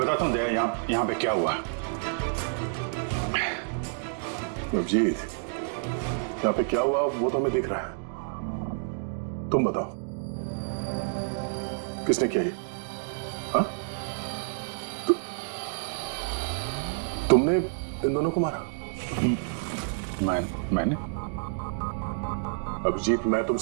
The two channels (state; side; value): silent; left; digital silence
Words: हूँ दया, यहाँ पे क्या हुआ। अभिजीत, यहाँ पे क्या हुआ वो तो हमें दिख रहा है। तुम बताओ, किसने किया ये? हाँ? तुमने इन दोनों को मारा? मैंने? अभिजीत, मैं